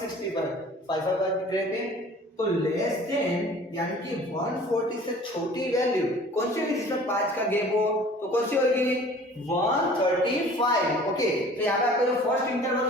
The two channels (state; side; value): normal; both; correlation 0.48